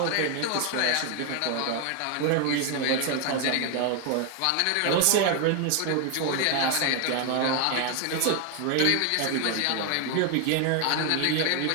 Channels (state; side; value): different; both; correlation 0.01